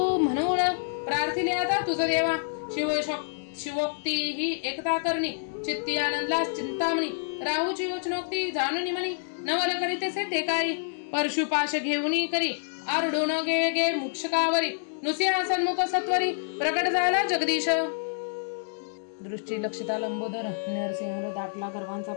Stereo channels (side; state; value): right; silent; digital silence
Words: म्हणून प्रार्थिले आता तुझ देवा शिवोक्ती ही एकता करणी चित्ती आनंदला चिंतामणी राहूची वचनोक्ती जाणून म्हणी नवल करीतेसे ते काळी परशुपाश घेऊनी करी आरडून गे मुक्षकावरी नुसिंहा सन्मुख सत्वरी प्रकट झाला जगदीश दृष्टी लक्षिता लंबोदर नरसिंह दाटला गर्वांचा